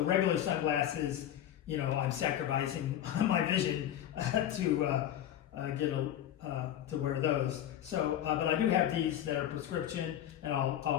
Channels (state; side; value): quieter; right; 11.3 dB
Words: regular sunglasses, I'm sacrificing my vision to wear those. So, but I do have these that are prescription, and